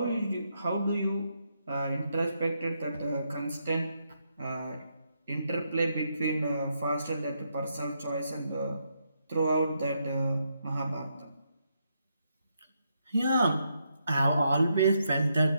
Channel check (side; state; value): both; inverted; correlation -0.79